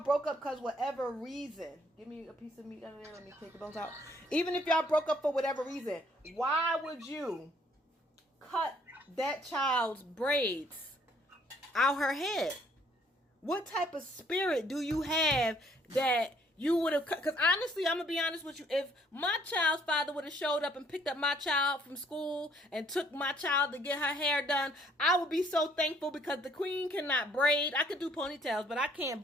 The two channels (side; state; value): both; normal; correlation 0.64